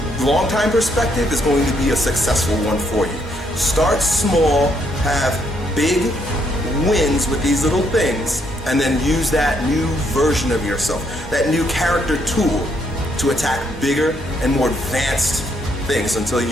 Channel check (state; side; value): normal; both; correlation 0.73